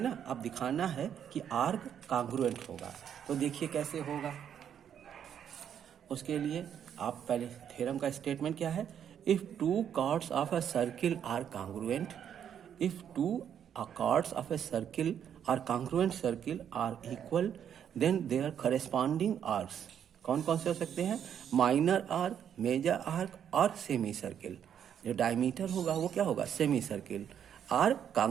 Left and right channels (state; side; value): quieter; left; 8.9 dB